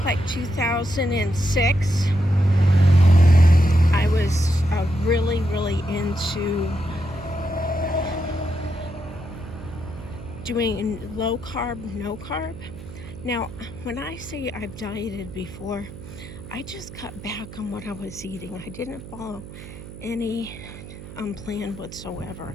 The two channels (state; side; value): noise; right; hum, 14 dB below the sound